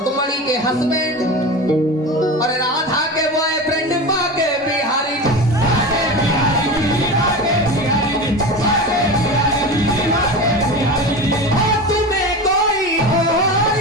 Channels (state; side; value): normal; both; correlation 0.28